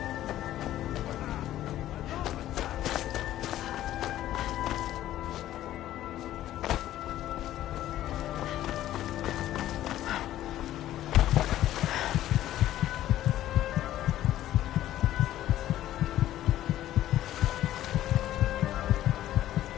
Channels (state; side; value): quieter; right; 13.3 dB